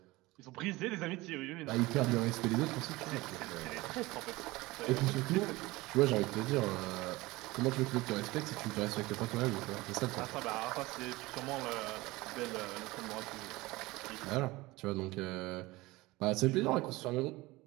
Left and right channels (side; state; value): left; quieter; 20.5 dB